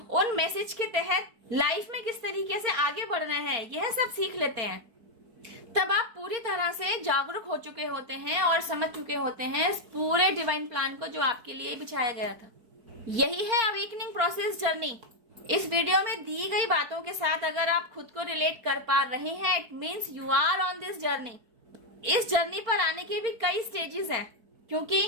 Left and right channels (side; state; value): left; late; 4.6 ms